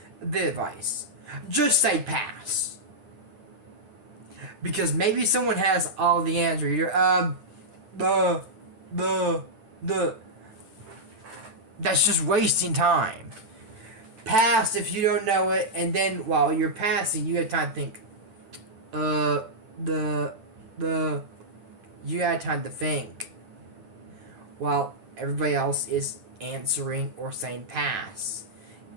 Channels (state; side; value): late; left; 10 ms